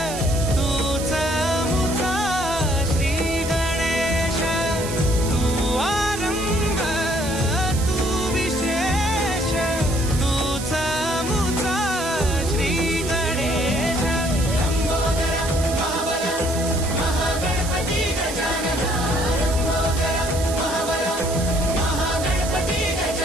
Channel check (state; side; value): noise; right; hiss, 9 dB below the sound